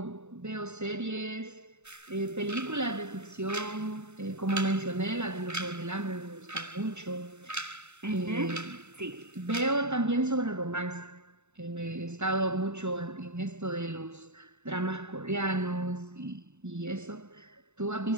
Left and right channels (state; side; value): late; left; 0.82 ms